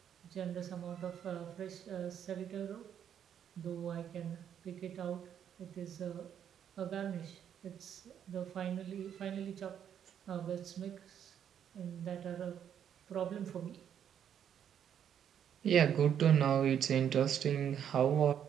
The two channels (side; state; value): left; quieter; 9.0 dB